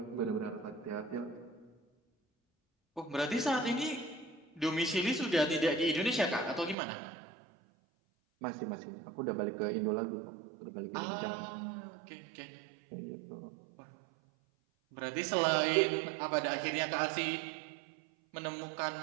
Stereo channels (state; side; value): drops out; left; at 6.8 s